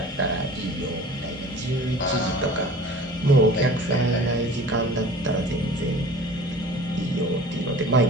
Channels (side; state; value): both; normal; correlation 0.43